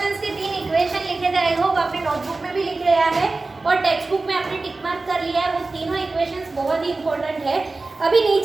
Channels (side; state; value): left; quieter; 3.5 dB